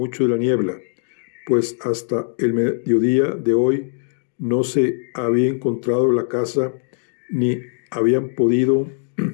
de la niebla, pues hasta el mediodía de hoy no se había encontrado la casa ni habían podido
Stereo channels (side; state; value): right; silent; digital silence